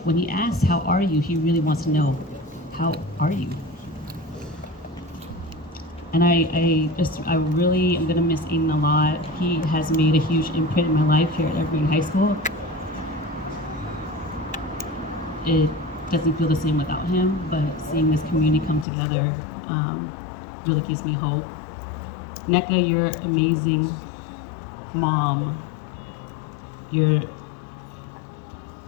When he asks, how are you? He really wants to know, how are you? And I really am gonna miss Aidan a lot. He has made a huge imprint in my life here at Evergreen High School. It doesn't feel the same without him, but seeing this community come together really gives me hope. NECA, you're amazing mom. You're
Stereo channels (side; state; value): right; drops out; at 18.9 s